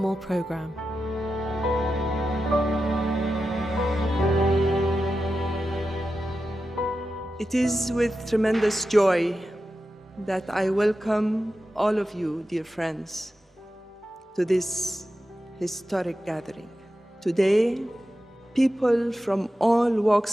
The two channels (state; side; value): normal; both; correlation 0.91